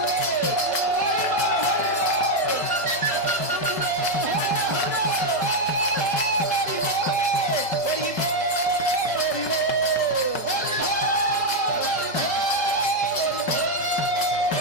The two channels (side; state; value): right; late; 5.4 ms